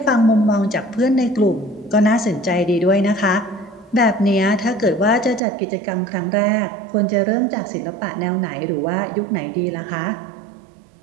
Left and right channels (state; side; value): drops out; left; at 5.4 s